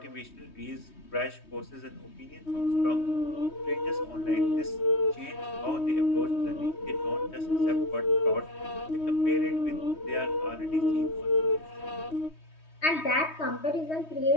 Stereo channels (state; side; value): late; right; 3.2 ms